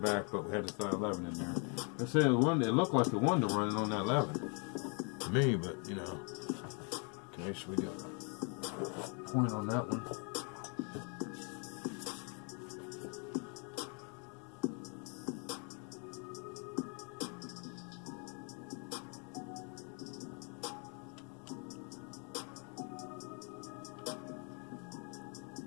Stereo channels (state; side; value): quieter; right; 36.7 dB